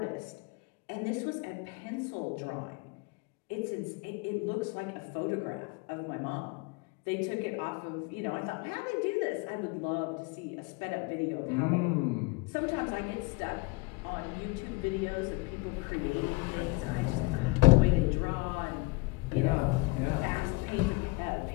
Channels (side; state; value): right; quieter; 23.4 dB